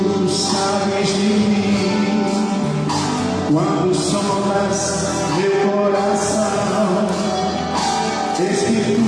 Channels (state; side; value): identical; both; correlation 1.00